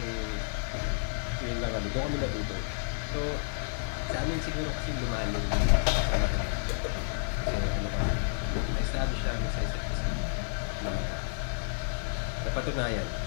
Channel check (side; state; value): right; silent; digital silence